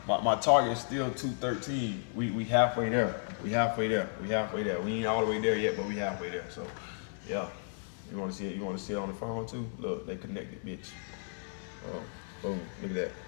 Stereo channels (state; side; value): silent; right; 56 dB below the other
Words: My target is still 213. We halfway there. We halfway there. We halfway there. We ain't all the way there yet, but we halfway there. So, yeah. You want to see it? You want to see it on the phone too? Look, they connected, bitch. Oh, boom. Look at that.